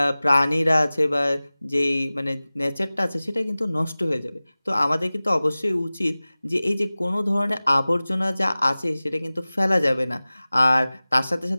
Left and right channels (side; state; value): both; inverted; correlation -0.99